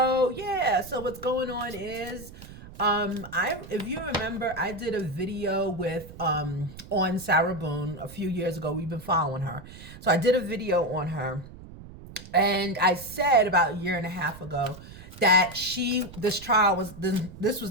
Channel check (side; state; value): right; noise; rumble, 16 dB below the sound